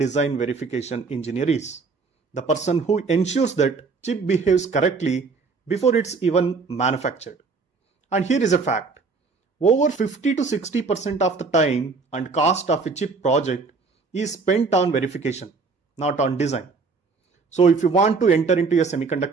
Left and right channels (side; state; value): left; quieter; 4.5 dB